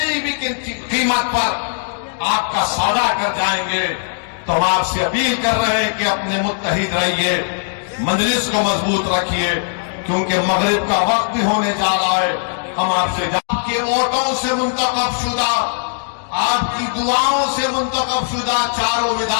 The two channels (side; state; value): right; silent; digital silence